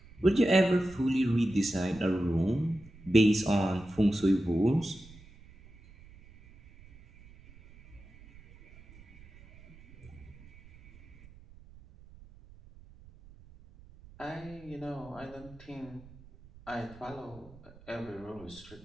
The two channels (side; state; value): right; noise; rumble, 22 dB below the sound